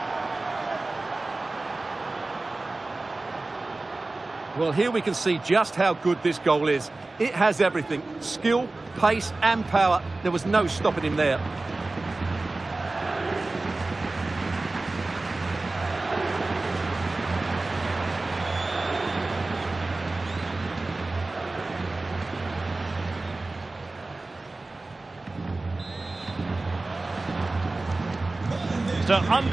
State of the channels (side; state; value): left; quieter; 3.2 dB